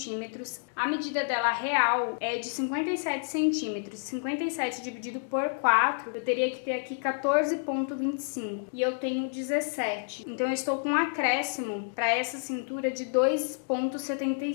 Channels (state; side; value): silent; right; digital silence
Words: A medida dela real é de 57 centímetros. 57 dividido por 4, eu teria que ter aqui 14,25. E eu tenho 17. Então eu estou com um acréscimo para essa cintura de